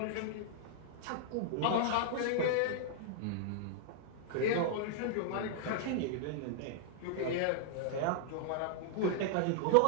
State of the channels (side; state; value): both; different; correlation -0.01